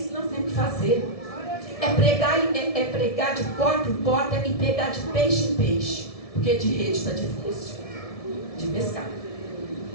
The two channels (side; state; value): right; late; 1.7 ms